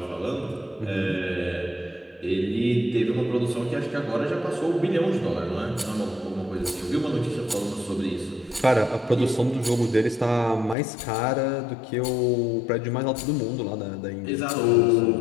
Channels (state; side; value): drops out; right; at 10.8 s